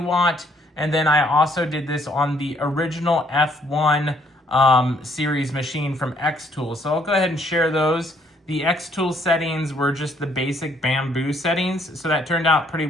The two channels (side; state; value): both; normal; correlation 0.66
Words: And then I also did this on the original F1 series machine from xTool. So I'll go ahead and share those. The xTool settings were just the basic bamboo settings, so that turned out pretty